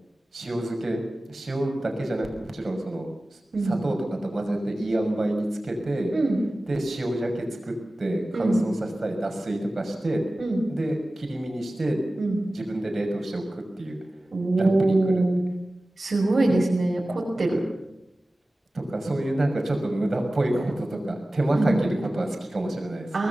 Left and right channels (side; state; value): both; normal; correlation 0.96